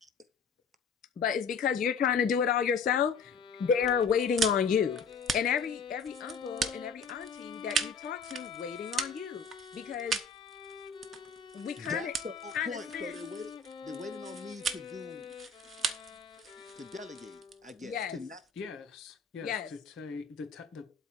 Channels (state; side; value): quieter; right; 4.8 dB